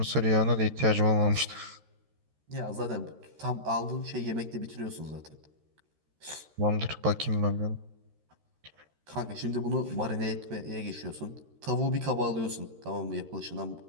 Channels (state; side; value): late; left; 13 ms